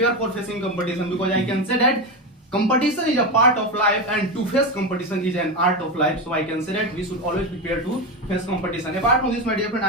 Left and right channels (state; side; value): normal; both; correlation 0.16